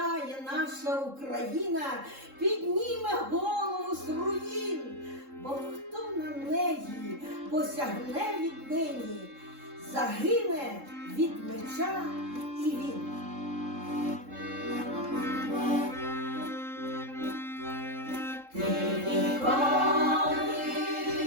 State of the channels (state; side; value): late; left; 3.7 ms